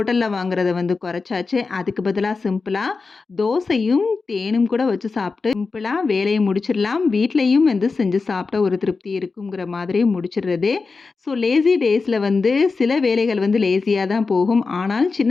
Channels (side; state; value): right; quieter; 4.3 dB